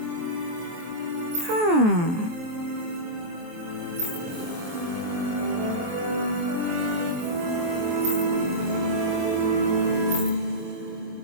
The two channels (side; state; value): left; late; 23 ms